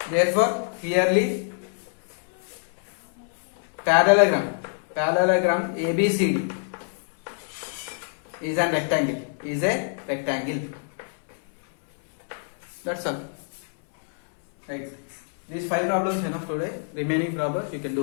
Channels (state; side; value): silent; right; 61 dB below the other